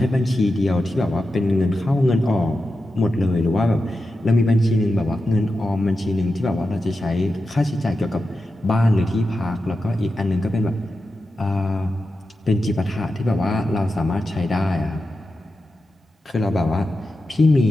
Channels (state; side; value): normal; both; correlation 0.90